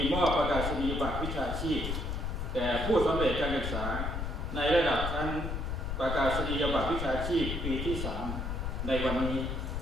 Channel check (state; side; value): noise; left; rumble, 3 dB below the sound